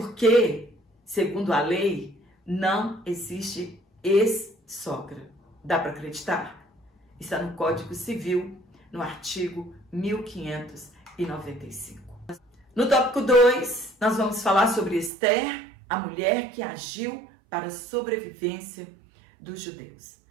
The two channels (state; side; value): drops out; left; at 15.1 s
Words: segundo a lei, não existe ex-sogra. Dá para acreditar? Está no Código Civil, no artigo 1595. No tópico 2, nós vamos falar sobre Esther, a mulher que agiu para a sobrevivência dos judeus.